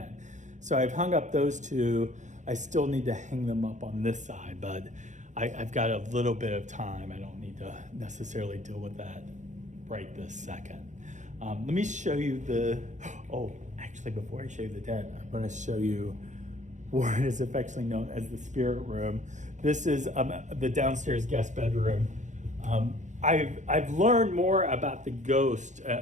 So I've hung up those 2. I still need to hang them up on this side, but I've got a little bit of time. I don't need to necessarily deal with that right this second. Let me show you actually before I show you the den, I'm going to show you what is affectionately known as the spirit room. This is the downstairs guest bedroom. I've learned more about the ghost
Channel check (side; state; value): left; late; 0.35 ms